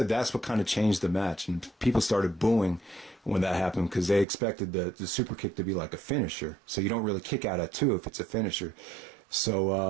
that's what kind of changed the match. And people started booing when that happened because they expected the super kick to be like a finisher. So you don't really kick out at 2 if it's a finisher.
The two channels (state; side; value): drops out; left; at 4.2 s